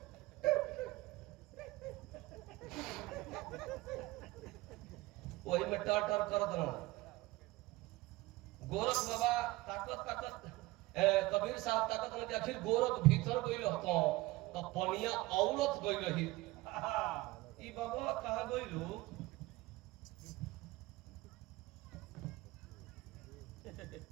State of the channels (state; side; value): quieter; left; 20.1 dB